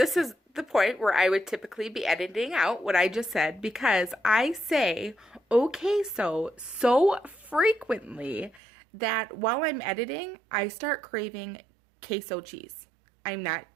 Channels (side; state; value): left; drops out; at 8.6 s